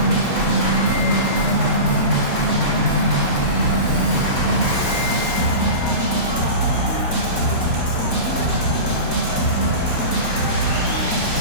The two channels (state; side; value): late; right; 3.7 ms